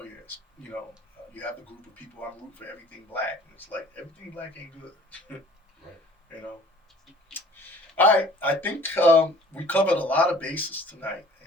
yeah. You have the group of people, I'm rooting for everything black, and it's like everything black ain't good. Right. All right, I think we covered a lot of bases tonight,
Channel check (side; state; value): both; normal; correlation 0.51